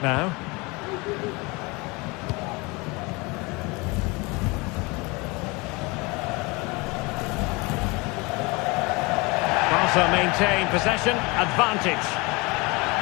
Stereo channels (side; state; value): right; quieter; 26.2 dB